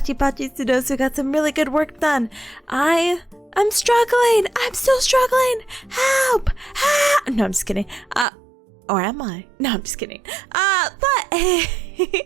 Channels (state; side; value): drops out; left; at 8.2 s